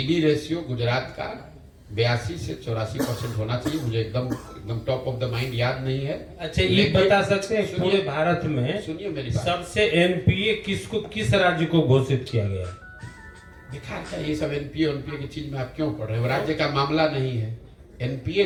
रेशियो गुजरात का 82 से 84% होना चाहिए, मुझे एकदम टॉप ऑफ द माइंड याद नहीं है। अच्छा, ये बता सकते हैं पूरे भारत में सुनिए मेरी बात, सबसे एनपीए किस राज्य को घोषित किया गया? बेकार है ये सब एनपीए की चीज में आप क्यों पढ़ रहे हैं? राज्य का मामला नहीं है। एनपीए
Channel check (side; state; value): both; identical; correlation 1.00